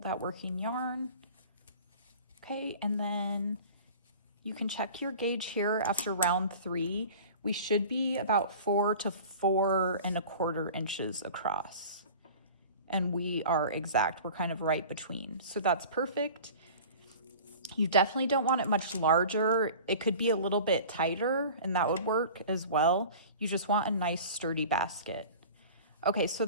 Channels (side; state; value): both; inverted; correlation -0.40